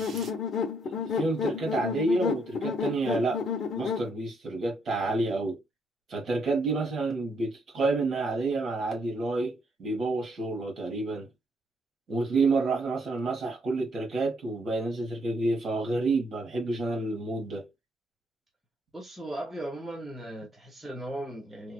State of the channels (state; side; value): normal; both; correlation 0.72